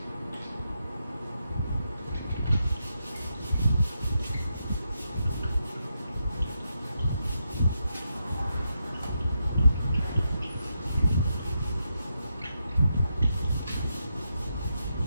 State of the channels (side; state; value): both; inverted; correlation -0.84